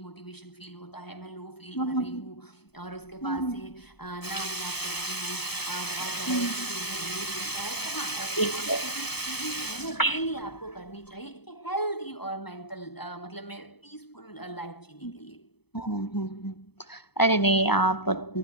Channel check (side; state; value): right; late; 0.98 ms